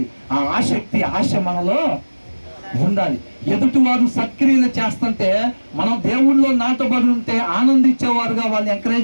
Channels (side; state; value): both; inverted; correlation -1.00